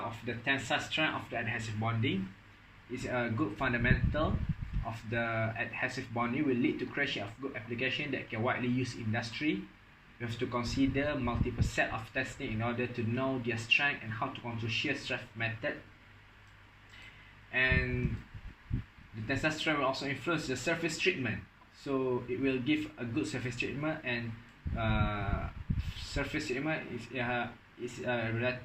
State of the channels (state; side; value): identical; both; correlation 1.00